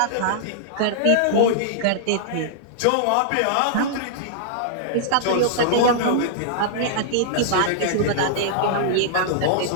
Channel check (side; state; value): both; different; correlation -0.02